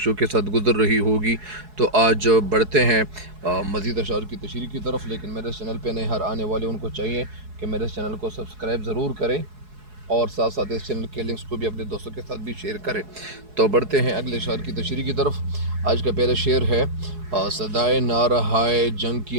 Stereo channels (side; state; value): left; late; 4.7 ms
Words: کے ساتھ گزر رہی ہوگی۔ تو آج بڑھتے ہیں مزید اشعار کی تشریح کی طرف، لیکن میرے چینل پہ نئے ہر آنے والے ان کو چاہیے کہ میرے چینل کو سبسکرائب ضرور کریں اور ساتھ ساتھ اس چینل کے لنکس کو بھی اپنے دوستوں کے ساتھ بھی شیئر کریں۔ تو بڑھتے ہیں اگلے اشعار کی تشریح کی طرف۔ آج کا پہلا شعر ہے صدائے نارہائے جنگ